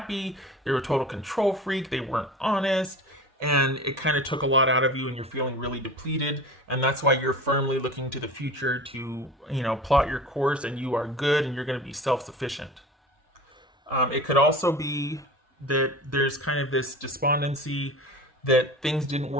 They were a total control freak. They weren't honest. And it kind of took a lot out of you and you're feeling really depleted. And that's why you're firmly looking to the future to, plot your course and you are good and you're going to be self-sufficient. It could also be that there's kind of this despondency that things didn't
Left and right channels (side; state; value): both; normal; correlation 0.36